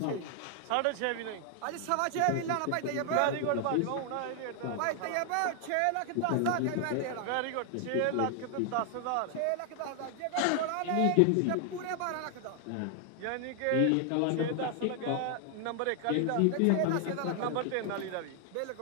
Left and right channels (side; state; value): both; different; correlation 0.00